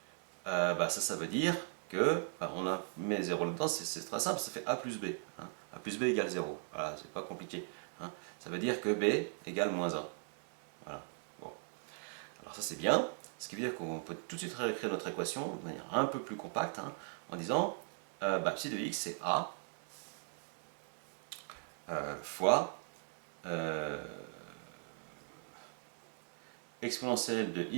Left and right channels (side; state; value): left; silent; 52 dB below the other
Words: ça veut dire que, on a mis 0 là-dedans, c'est très simple, ça fait a plus b. Hein. A plus b égale 0. Voilà, c'est pas compliqué. Hein. Ça veut dire que b égale moins 1. Voilà. Bon. Alors ça c'est bien, ce qui veut dire qu'on peut tout de suite réécrire notre équation de manière un peu plus compacte, hein, en disant psi de x c'est a fois exponentielle de